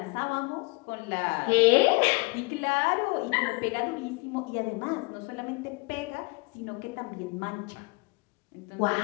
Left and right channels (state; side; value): quieter; right; 27.2 dB